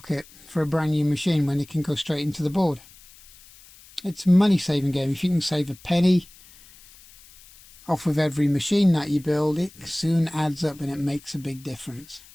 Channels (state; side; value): noise; left; hiss, 24 dB below the sound